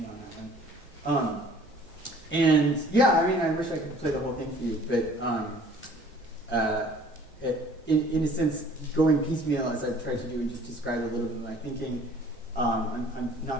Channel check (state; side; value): normal; both; correlation 0.53